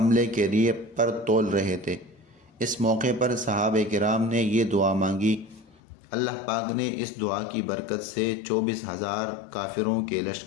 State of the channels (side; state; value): right; drops out; at 5.8 s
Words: کے لیے پر تول رہے تھے۔ اس موقع پر صحابہ کرام نے یہ دعا مانگی۔ اللہ پاک نے اس دعا کی برکت سے 24,000 کافروں کے